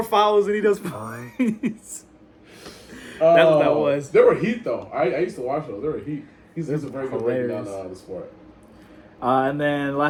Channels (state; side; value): identical; both; correlation 1.00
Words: fouls than he does points. That's what that was. There were heat, though. I used to watch those. There were heat. He's a very good breaking down the sport. And then